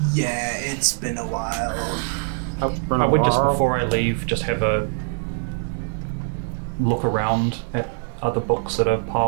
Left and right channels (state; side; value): silent; left; 55 dB below the other